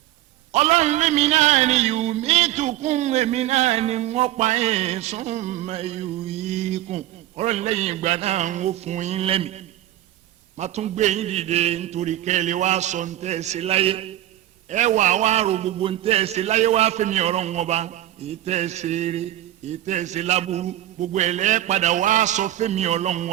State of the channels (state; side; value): quieter; left; 14.0 dB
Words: ọlọ́run lèmi náà ni yumitukum èmi náà ni wọ́n pa yín summa yuhyikum ọlọ́run lẹ́yìn ìgbà náà ń wó fún yín lẹ́mìí má tún gbé yín dìde nítorí kẹ́lẹ́ wá sọ ń tẹ́ ẹ sí láyé ẹ wà wá ro gbogbo ń tẹ́ ẹ sí láyé wá fẹ́mi ọ̀rọ̀ wọn bá èyí tẹ́ ẹ ṣe eré èyí tẹ́ ẹ ṣe láburú gbogbo ẹ̀ lẹ́ padà wá sọ fẹ́mi ọlọ́run